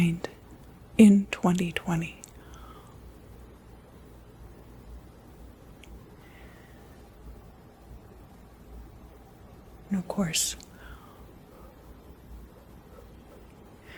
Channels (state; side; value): identical; both; correlation 1.00